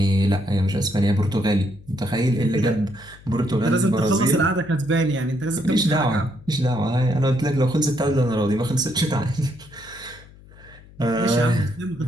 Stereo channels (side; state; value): left; noise; hum, 22 dB below the sound